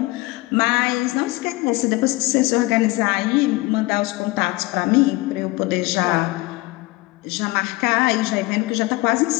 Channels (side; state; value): right; quieter; 21.4 dB